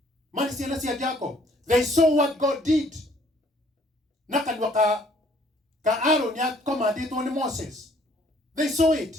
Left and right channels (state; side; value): normal; both; correlation 0.61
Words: They saw what God did. Aaron had commanded on Moses. They saw it.